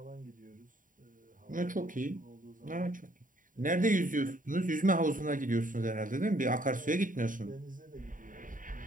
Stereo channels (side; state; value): left; late; 0.39 ms